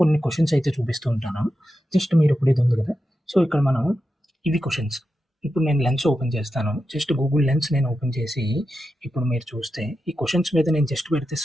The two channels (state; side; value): normal; both; correlation 0.90